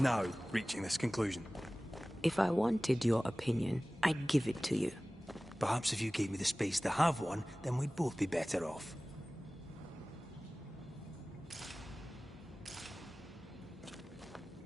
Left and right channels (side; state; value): both; normal; correlation 0.98